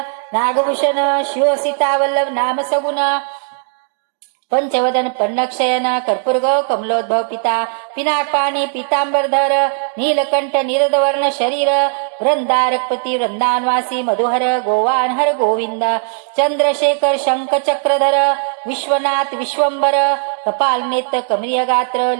नागभूषण शिव सीता वल्लभ नाम सगुण पंचवदन पन्नक्षयन कर्पूर्ग कमलोद्भव पिता पिनाकपाणी पितांबरधर नीलकंठ निरदवर्ण शरीर वृंदारकपती वृंदानवासी मधुहर गोवानहर गोविंद चंद्रशेखर शंख चक्रधर विश्वनाथ विश्वंबर कपाल नेत्र कमरीय गात्र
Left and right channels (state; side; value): silent; left; digital silence